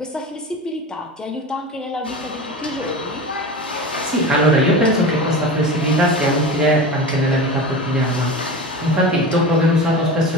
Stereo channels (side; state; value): both; normal; correlation 0.29